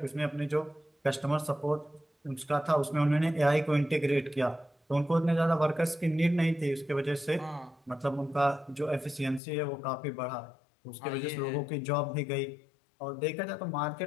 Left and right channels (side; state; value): right; drops out; at 9.4 s